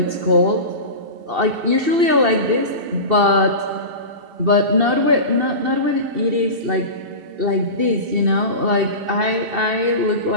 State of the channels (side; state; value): left; late; 2.7 ms